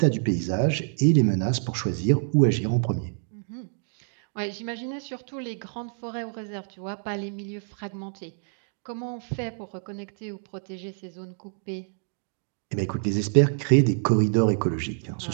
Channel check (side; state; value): left; silent; digital silence